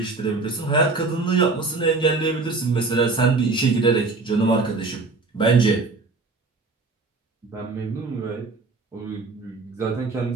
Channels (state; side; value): quieter; left; 3.8 dB